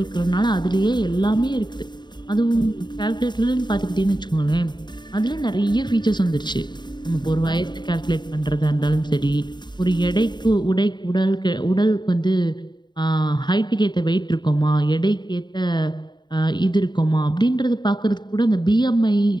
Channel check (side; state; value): right; late; 0.21 ms